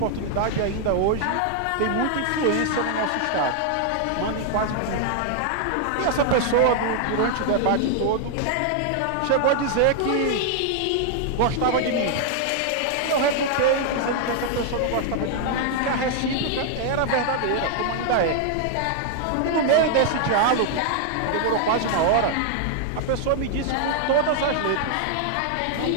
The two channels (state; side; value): different; both; correlation 0.00